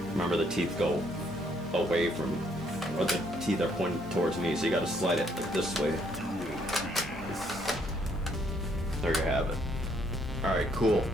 Remember, the teeth go away from, or the teeth are pointing towards me, so you gotta slide it like this way. There you have it. Alright, cool.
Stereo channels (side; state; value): both; normal; correlation 0.69